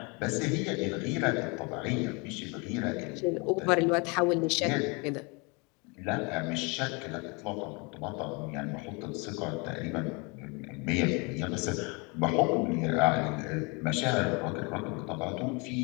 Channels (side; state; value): right; quieter; 30.4 dB